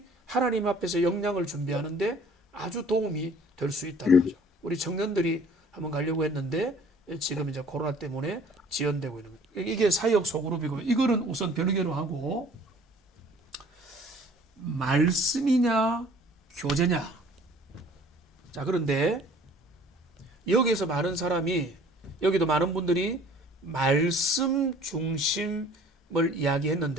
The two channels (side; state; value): both; normal; correlation 0.52